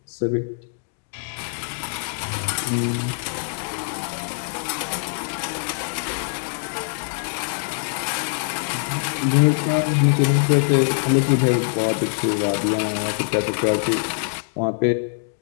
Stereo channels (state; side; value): silent; right; digital silence